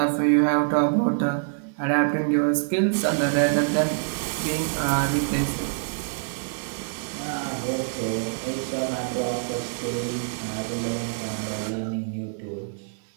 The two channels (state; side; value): silent; left; digital silence